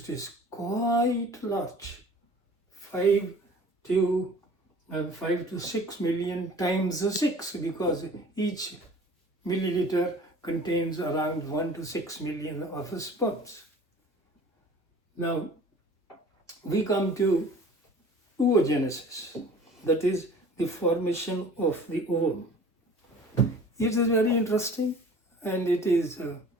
is quite large, 5 to 6 million times 6, because each milliliter contains around 1 to 6 million of sperms. Now, we come to oogenesis, that is the formation of the ovum. It is very interesting, and it is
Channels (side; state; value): both; normal; correlation 0.46